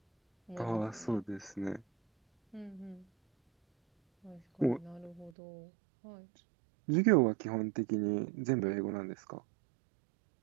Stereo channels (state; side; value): drops out; left; at 5.3 s